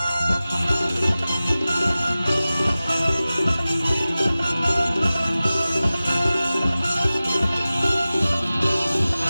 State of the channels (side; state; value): both; inverted; correlation -0.96